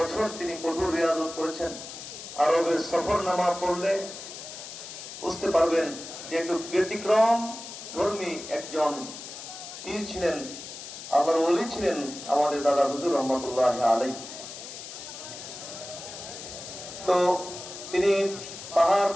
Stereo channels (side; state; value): left; noise; hiss, 11 dB below the sound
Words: তিনি কঠোর রিয়াজত করেছেন। আরবের সফরনামা পড়লে বুঝতে পারবেন যে একটু ব্যতিক্রম ধর্মী একজন পীর ছিলেন, আল্লাহর ওলি ছিলেন আমাদের দাদা হুজুর রহমাতুল্লাহ আলাইহি। তো তিনি পাহাড়